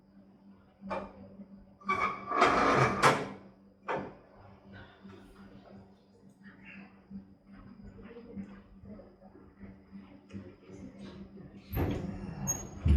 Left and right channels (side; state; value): both; identical; correlation 1.00